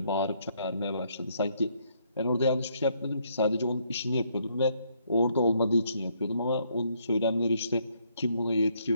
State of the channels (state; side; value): inverted; both; correlation -0.71